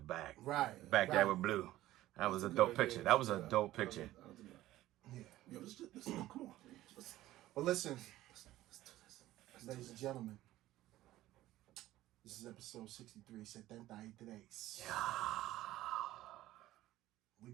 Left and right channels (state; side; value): quieter; left; 15.3 dB